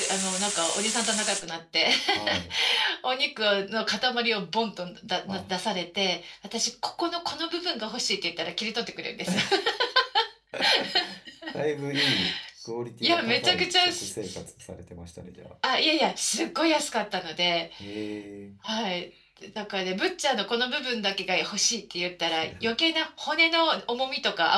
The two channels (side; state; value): both; identical; correlation 1.00